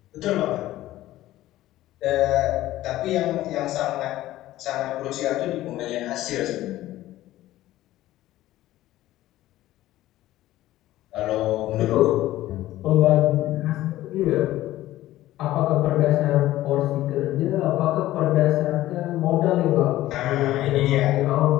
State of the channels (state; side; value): quieter; right; 15.2 dB